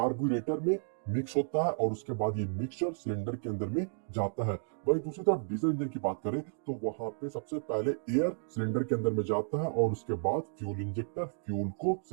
में मिक्स होता है और उसके बाद ये मिक्सचर सिलेंडर के अंदर में जाता है। वहीं दूसरी तरफ डीजल इंजन की बात करें तो वहां पे सबसे पहले एयर सिलेंडर के अंदर में जाता है और उसके बाद फ्यूल इंजेक्टर फ्यूल को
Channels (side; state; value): left; silent; digital silence